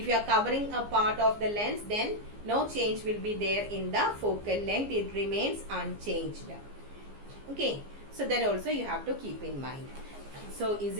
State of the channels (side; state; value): left; late; 15 ms